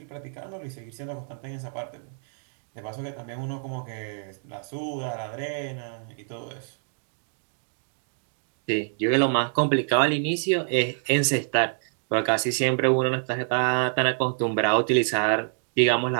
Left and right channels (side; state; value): left; silent; digital silence